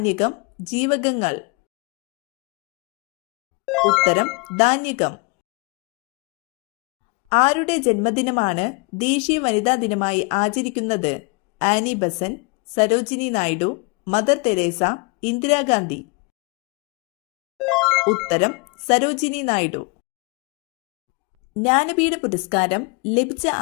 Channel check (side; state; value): right; quieter; 30.3 dB